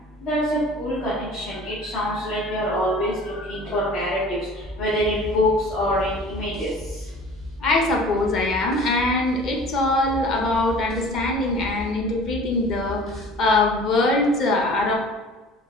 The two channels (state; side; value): normal; both; correlation 0.45